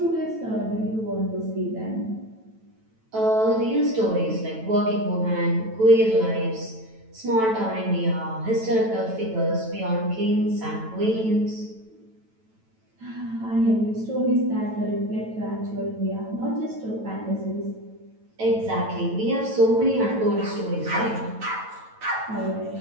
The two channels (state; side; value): late; left; 9.1 ms